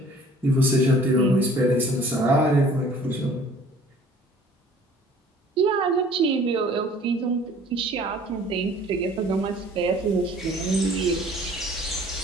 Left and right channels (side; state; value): both; normal; correlation 0.52